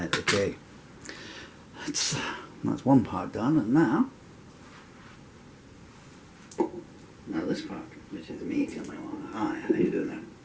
okay. That's one part done, and now this part, which is me coming along. Hi, how you doing there?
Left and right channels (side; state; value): both; identical; correlation 1.00